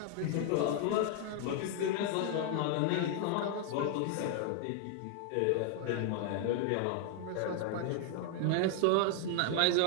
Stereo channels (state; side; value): different; both; correlation 0.00